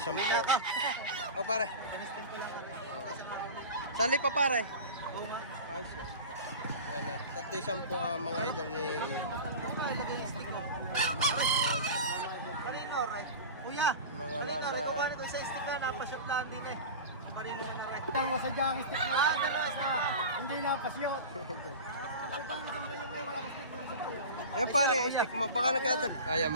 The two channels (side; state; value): both; inverted; correlation -0.31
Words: O pare. Sali pa pare. Ay siya. Yan na. 3,10 ang mga idol ni... Kuya, Mga nasa... ito sa stick na, napashoot lang din eh. Marino na rin. Ang masadyang stick na. Hindi napashoot. Ayan pare, stick mo. Baka nagkatag. Ayan